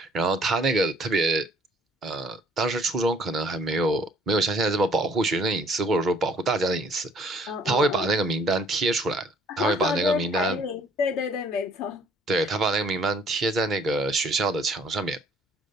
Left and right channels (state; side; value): normal; both; correlation 0.60